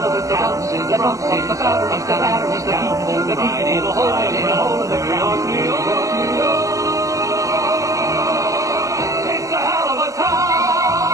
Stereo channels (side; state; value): left; late; 0.16 ms